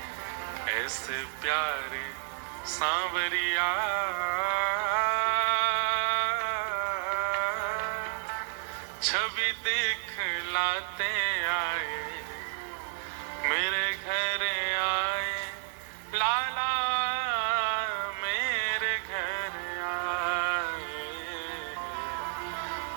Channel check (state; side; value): silent; left; digital silence